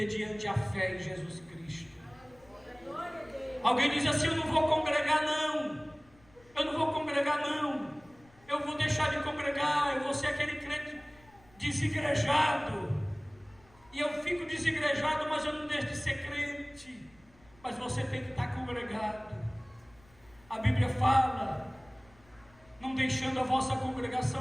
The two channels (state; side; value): noise; left; rumble, 28 dB below the sound